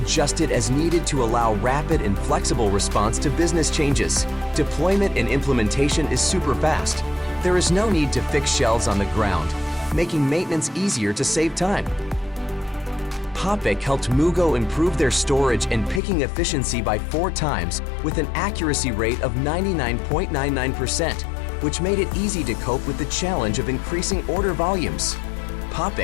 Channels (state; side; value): drops out; right; at 16.0 s